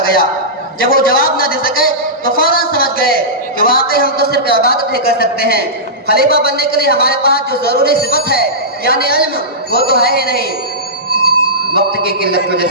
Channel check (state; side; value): normal; both; correlation -0.16